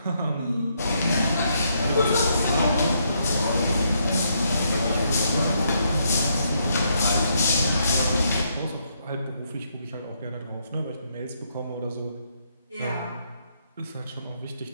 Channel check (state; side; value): inverted; both; correlation -0.75